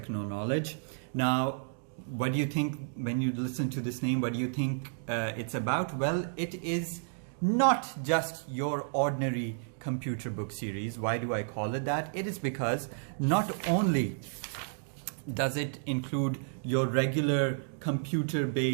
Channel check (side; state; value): left; silent; digital silence